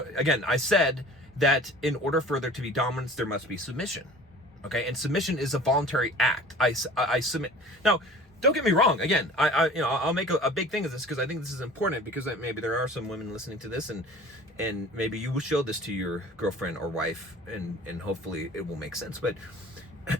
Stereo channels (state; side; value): normal; both; correlation 0.44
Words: again, I said that in order for there to be dominance, there must be submission. Okay, and submission is a voluntary act. I submit. Now, don't get me wrong. Again, I'll make a big thing of this, because I think this is important, because maybe there are some women listening to this, and maybe you will show this to your girlfriend or wife, and hopefully it will make sense. But